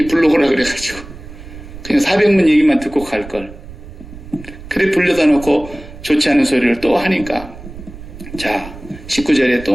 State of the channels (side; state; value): right; noise; rumble, 15 dB below the sound